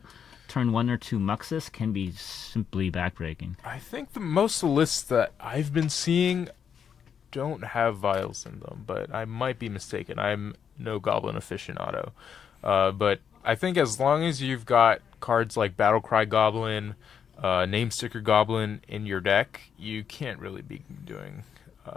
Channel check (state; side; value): quieter; right; 7.7 dB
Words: turn 1 or 2 Muxus can be simply backbreaking. I think most of the lists that I've been seeing don't have Vials in them, but I might be mistaken. I'm no Goblin aficionado. But I think as long as you've got cards like Battlecry Goblin, Namesticker Goblin in your deck, you can't really be doing